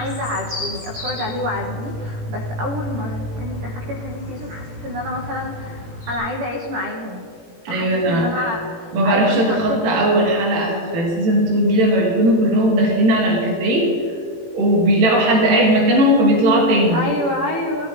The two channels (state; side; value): late; left; 18 ms